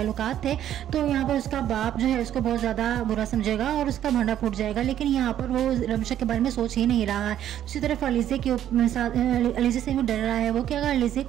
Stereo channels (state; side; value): quieter; left; 11.1 dB